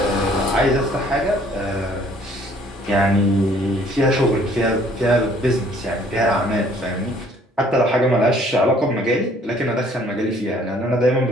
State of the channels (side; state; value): both; normal; correlation 0.59